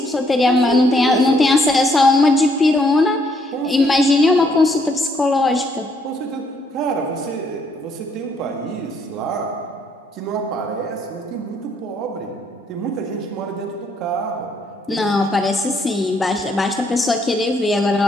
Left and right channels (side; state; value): both; normal; correlation 0.70